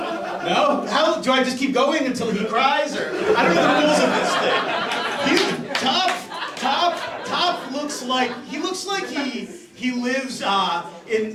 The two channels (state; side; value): identical; both; correlation 1.00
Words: How do I just keep going until he cries, or I don't know the rules of this thing. Top looks like he lives